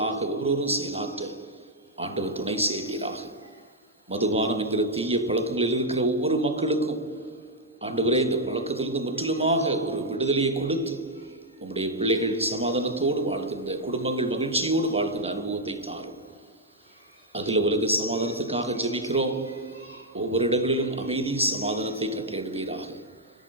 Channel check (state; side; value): normal; both; correlation -0.03